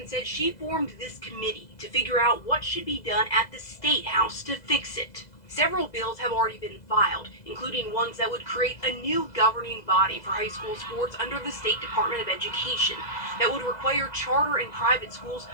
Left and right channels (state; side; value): late; right; 2.0 ms